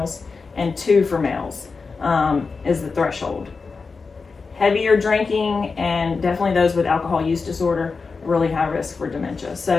and 2 for males is the threshold. Heavier drinking, and definitely those with alcohol use disorder, really high risk for dementia.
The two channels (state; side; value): quieter; right; 4.6 dB